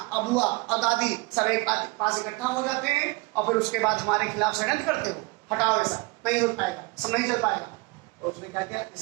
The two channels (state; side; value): quieter; left; 25.5 dB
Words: बुआ और दादी सब एक पास इकट्ठा हो जाते हैं और फिर उसके बाद हमारे खिलाफ षड्यंत्र करते हो। हटाओ, ऐसा नहीं हो पाएगा, सब नहीं चल पाएगा। तो उसने क्या किया?